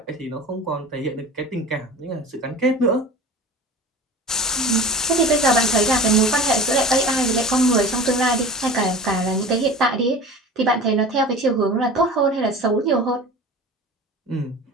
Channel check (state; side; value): normal; both; correlation 0.36